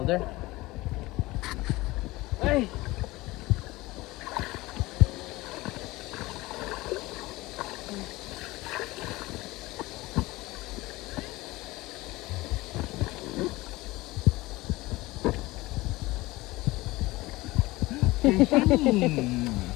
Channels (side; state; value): right; quieter; 20.1 dB